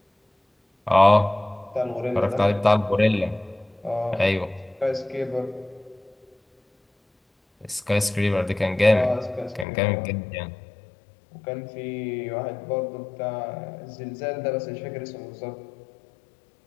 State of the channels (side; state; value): right; drops out; at 9.7 s